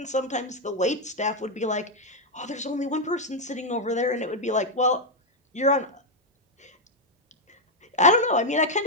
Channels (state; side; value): normal; both; correlation 0.00